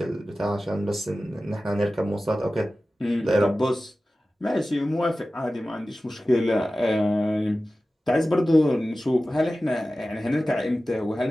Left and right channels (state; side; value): normal; both; correlation 0.95